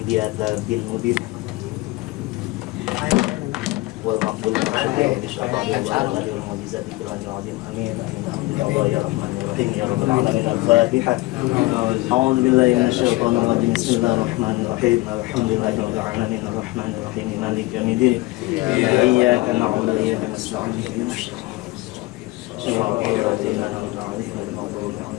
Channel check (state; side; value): quieter; right; 20.5 dB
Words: Diata bin Mudin wal maqbul wal mu'jizati kullanil azim. Amin amin ya rahmanir rahim ya rabbal alamin. Al-Fatihah. A'udzu billahi minasyaitonir rajim. Bismillahirrahmanir rahim. Alhamdulillahi rabbil alamin arrahmanir rahim maliki yaumiddin. Iyyaka na'budu wa iyyaka nasta'in. Shiratal ladzina an'amta 'alaihim ghairil maghdubi